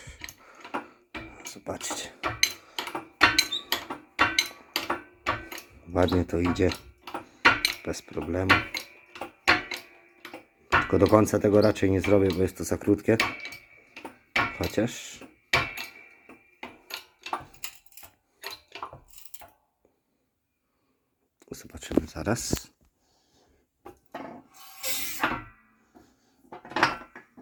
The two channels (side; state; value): both; identical; correlation 1.00